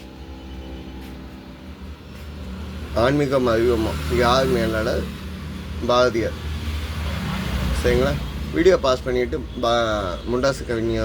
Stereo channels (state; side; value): identical; both; correlation 1.00